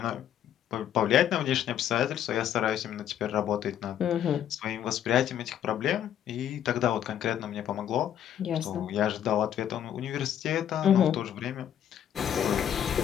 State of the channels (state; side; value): quieter; right; 10.2 dB